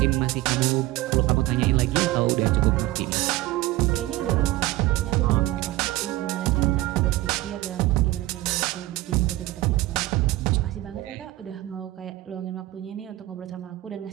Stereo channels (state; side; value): quieter; left; 17.4 dB